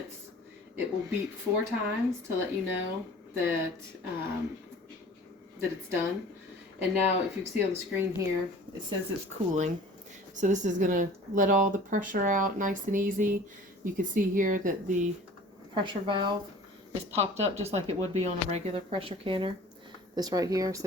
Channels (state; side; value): normal; both; correlation 0.45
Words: It will beep 4 times to let you know that that it's done. And now, if you see on the screen here, it says it's cooling. So this is gonna let all the pressure out nice and easy. You can see here that the pressure valve is popped up just like it would be on a regular pressure canner. This right here,